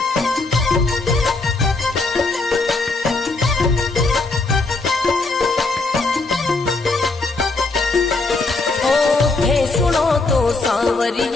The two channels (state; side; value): quieter; right; 3.5 dB